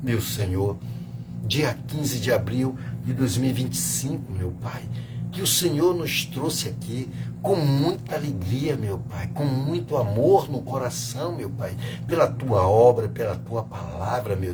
meu Senhor, dia 15 de abril de 2025, meu Pai, que o Senhor nos trouxe aqui com muita alegria, meu Pai, com muito amor no coração, meu Pai, pela Tua obra, pela Tua palavra, meu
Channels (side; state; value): both; identical; correlation 1.00